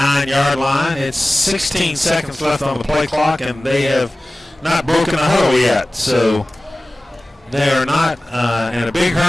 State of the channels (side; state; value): both; normal; correlation 0.97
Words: line. It's 16 seconds left on the play clock, and they have not broken a huddle yet. So they are not in a big